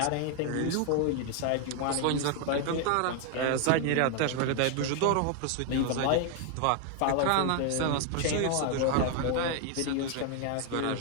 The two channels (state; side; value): different; both; correlation 0.00